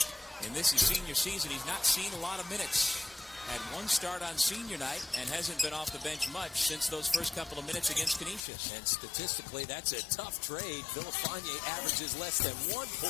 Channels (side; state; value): right; drops out; at 8.4 s